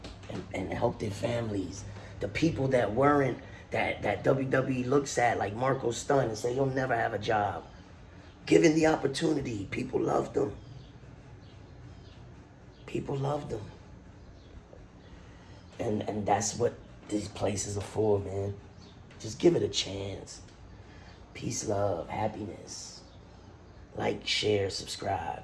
and help their families. The people that weren't, that WWE looks at like Marco Stunt and say, you'll never have a job. Given the opportunity, people loved them. People loved them. And that's what these places are for, man. Just give it a chance. Peace, love, happiness. Like, share, subscribe.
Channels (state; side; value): identical; both; correlation 1.00